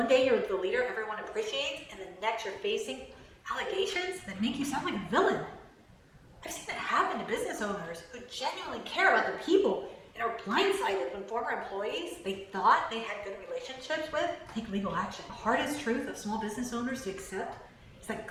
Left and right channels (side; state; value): both; identical; correlation 1.00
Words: day you're the leader everyone appreciates, and the next you're facing allegations that make you sound like a villain. I've seen it happen to business owners who genuinely care about their people and are blindsided when former employees they thought they had good relationships with take legal action. The hardest truth of small business owners to accept is that